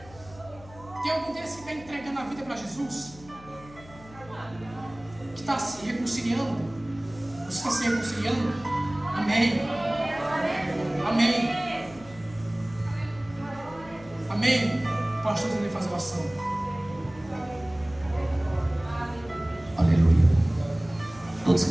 Tem algum desses que está entregando a vida para Jesus? Que está se reconciliando? Você está se reconciliando? Amém. Amém. Amém. Pastor, ele faz oração. Aleluia. Todos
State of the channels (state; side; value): noise; left; hum, 20 dB below the sound